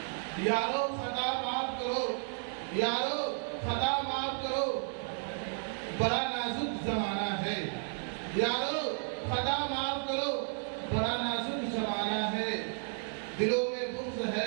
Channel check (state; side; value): silent; left; 56 dB below the other